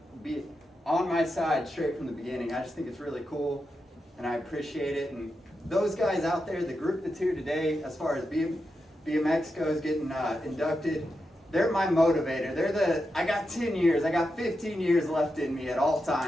be on my side straight from the beginning. I just think it's really cool and I appreciate it. And those guys out there, the group that's here today, as far as BMX goes, getting inducted, they're my motivator. I got 10 years, I got 15 years left in me at all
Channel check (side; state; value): both; normal; correlation 0.88